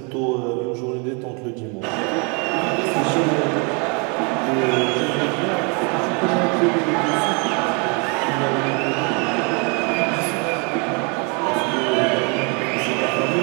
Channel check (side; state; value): left; quieter; 33.6 dB